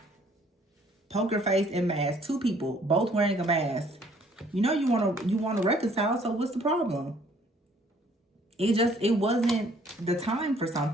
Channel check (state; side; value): normal; both; correlation 0.60